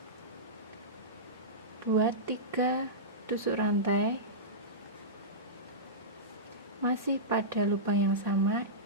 Buat 3 tusuk rantai. Masih pada lubang yang sama,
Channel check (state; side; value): normal; both; correlation -0.16